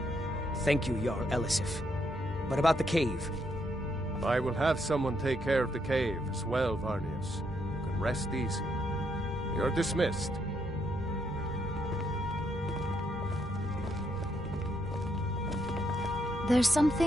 Thank you, Jarl Elisif. But about the cave? I will have someone take care of the cave as well, Varnius. You can rest easy. You're dismissed. There's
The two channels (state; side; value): normal; both; correlation 0.76